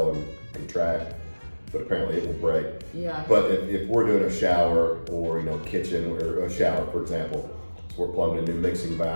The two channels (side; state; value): both; inverted; correlation -1.00